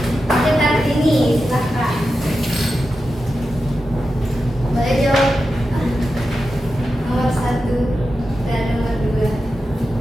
dekat sini, silahkan. Boleh jawab nomor 1 dan nomor 2.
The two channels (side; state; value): both; normal; correlation 0.90